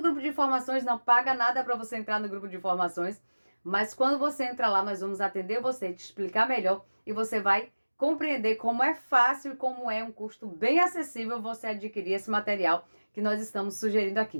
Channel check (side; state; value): both; inverted; correlation -1.00